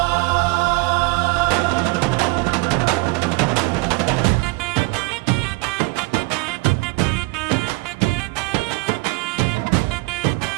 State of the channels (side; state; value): left; quieter; 25.4 dB